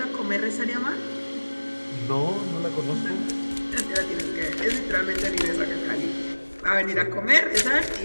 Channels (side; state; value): both; inverted; correlation -1.00